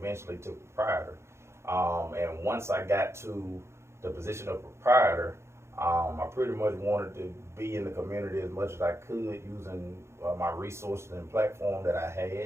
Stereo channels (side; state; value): left; late; 0.13 ms